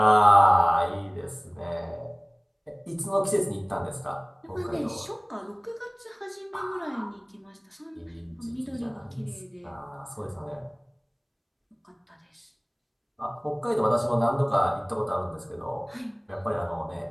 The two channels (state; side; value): identical; both; correlation 1.00